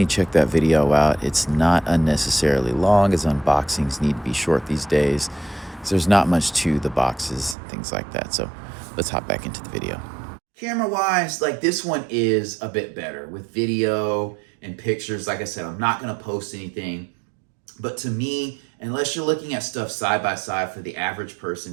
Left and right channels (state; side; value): drops out; left; at 7.6 s